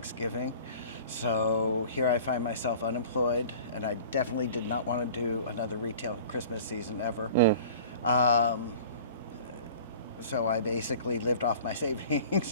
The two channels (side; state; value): both; inverted; correlation -0.44